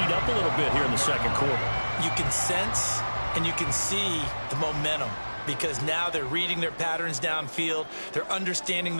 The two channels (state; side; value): inverted; both; correlation -1.00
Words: up a little bit here in the second quarter. You can sense and you can see the momentum because now they're reading their patterns downfield, they're understanding